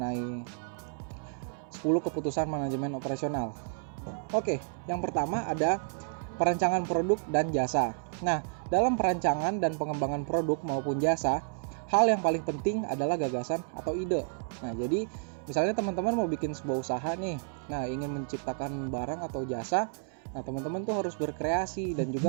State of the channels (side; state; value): left; silent; 57 dB below the other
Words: 10 keputusan manajemen operasional. Oke, yang pertama ada perancangan produk dan jasa. Nah, dalam perancangan dan pengembangan produk maupun jasa, hal yang paling penting adalah gagasan atau ide. Nah, jadi misalnya teman-teman mau bikin sebuah usaha nih, nah ingin menciptakan barang atau jasa, nah teman-teman tuh harus berkreasi dan